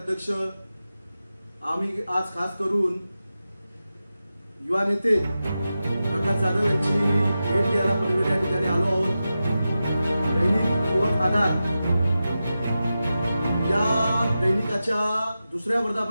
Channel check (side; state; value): both; inverted; correlation -0.92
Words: आम्ही आज खास करून युवा नेते प्रकाश जाधव यांची भेट घ्यायला पनवेल या ठिकाणी आलो आहोत। दैनिक युवक आधार या दैनिकाच्या दुसऱ्या